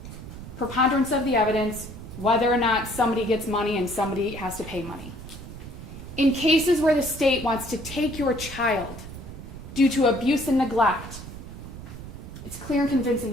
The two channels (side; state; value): right; noise; rumble, 12 dB below the sound